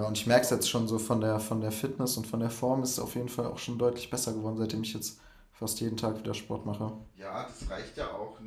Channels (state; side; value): identical; both; correlation 1.00